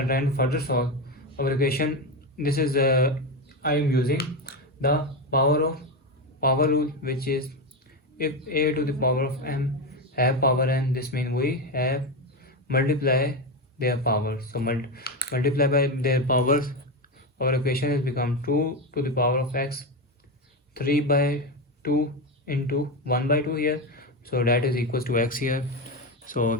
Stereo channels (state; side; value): normal; both; correlation 0.14